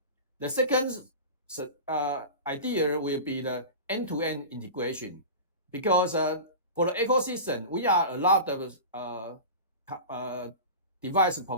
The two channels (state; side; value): inverted; both; correlation -0.31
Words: The second idea will be the end-to-end integration, because for the ecosystem, we are a lot of device